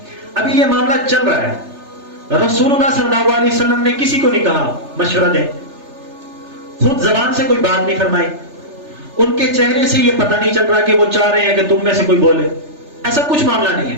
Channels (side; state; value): left; late; 3.3 ms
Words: ابھی یہ معاملہ چل رہا ہے، رسول اللہ صلی اللہ علیہ وسلم نے کسی کو نہیں کہا مشورہ دیں، خود زبان سے کوئی بات نہیں فرمائی، ان کے چہرے سے یہ پتہ نہیں چل رہا کہ وہ چاہ رہے ہیں کہ تم میں سے کوئی بولے. ایسا کچھ معاملہ نہیں